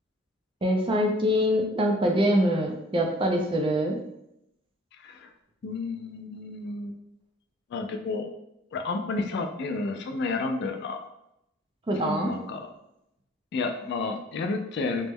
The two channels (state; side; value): normal; both; correlation 0.55